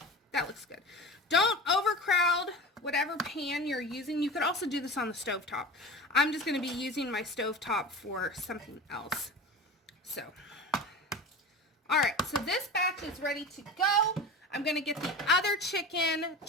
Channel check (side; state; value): both; normal; correlation 0.31